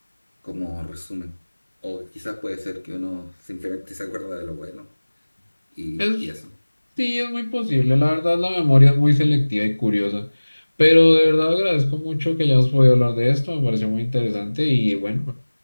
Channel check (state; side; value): inverted; both; correlation -1.00